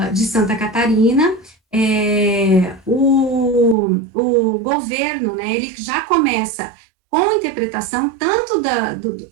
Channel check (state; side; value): drops out; left; at 3.8 s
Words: Santa Catarina, o governo, né, ele já começa com interpretação, tanto